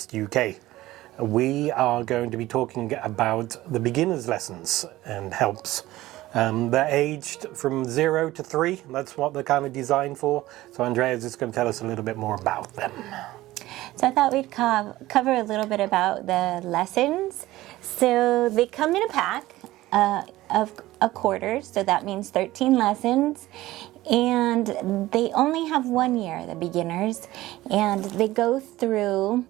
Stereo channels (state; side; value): quieter; left; 16.8 dB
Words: UK. We are going to be talking about the beginner's lessons and helps. They're aged from 0 to 3. That's what they're kind of designed for. So Andrea is just going to tell us a little bit more about them. So I thought we'd cover a little bit about the lessons. So they come in a pack of a quarter, so that means 13 lessons. And they only have 1 year, the beginners, and they go through